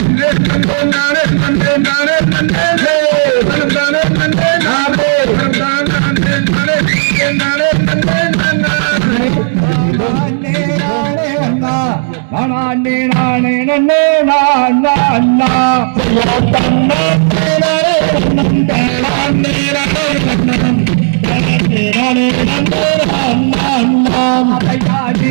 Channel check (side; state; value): left; silent; digital silence